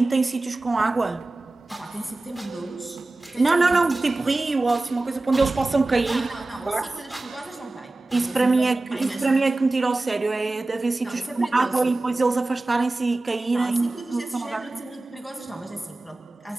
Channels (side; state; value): left; quieter; 3.0 dB